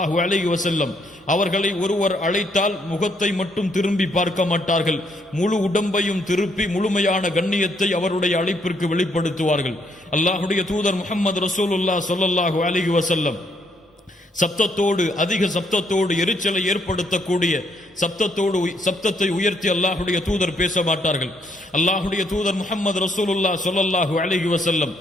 அலைஹி வஸல்லம் அவர்களை ஒருவர் அழைத்தால் முகத்தை மட்டும் திரும்பி பார்க்க மாட்டார்கள், முழு உடம்பையும் திருப்பி முழுமையான கண்ணியத்தை அவருடைய அழைப்பிற்கு வெளிப்படுத்துவார்கள். அல்லாஹுடைய தூதர் முஹம்மது ரசூலுல்லாஹ் ஸல்லல்லாஹு அலைஹி வஸல்லம் சப்தத்தோடு, அதிக சப்தத்தோடு, எரிச்சலை ஏற்படுத்தக்கூடிய சப்தத்தை உயர்த்தி அல்லாஹுடைய தூதர் பேச மாட்டார்கள். அல்லாஹுடைய தூதர் முஹம்மது ரசூலுல்லாஹ் ஸல்லல்லாஹு அலைஹி வஸல்லம்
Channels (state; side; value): normal; both; correlation 0.71